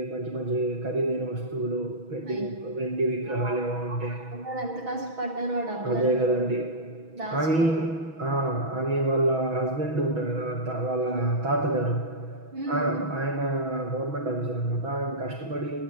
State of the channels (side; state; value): left; late; 6.2 ms